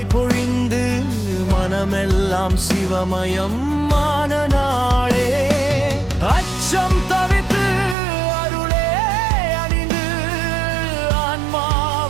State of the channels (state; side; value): drops out; left; at 8.0 s